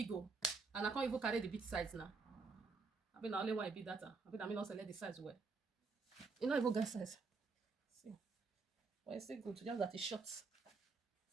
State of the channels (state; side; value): quieter; left; 4.4 dB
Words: oh. And I can't even carry the big size now. I mean, I only want a big data. I mean, also let the size well. You know, even get size. See. But it's still good. Just that it's short.